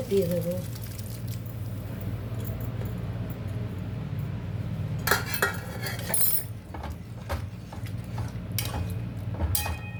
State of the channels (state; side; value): identical; both; correlation 1.00